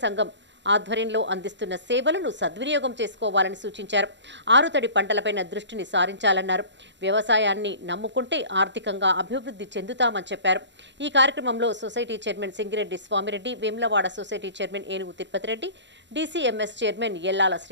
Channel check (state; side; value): late; left; 0.52 ms